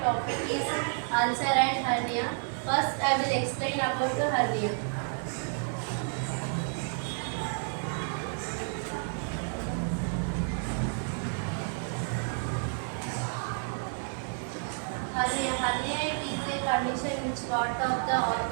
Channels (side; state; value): left; silent; 57 dB below the other